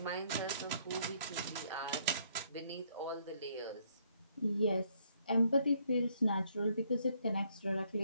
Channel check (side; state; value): both; inverted; correlation -0.69